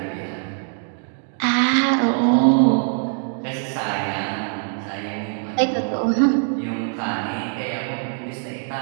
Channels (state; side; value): silent; left; 56 dB below the other